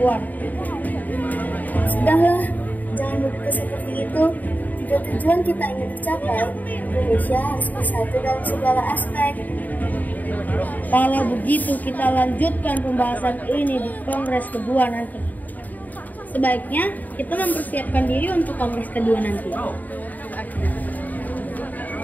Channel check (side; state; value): right; late; 0.081 ms